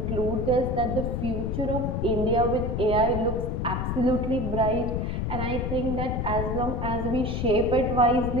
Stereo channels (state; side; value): noise; left; rumble, 2 dB below the sound